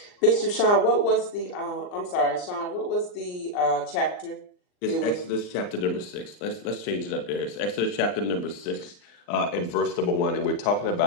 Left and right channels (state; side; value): late; right; 39 ms